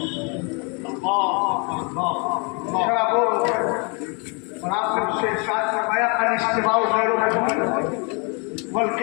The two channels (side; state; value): right; quieter; 33.8 dB